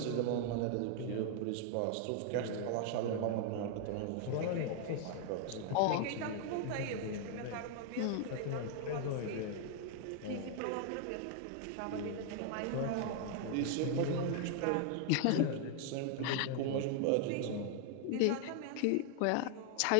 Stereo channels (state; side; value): different; both; correlation 0.00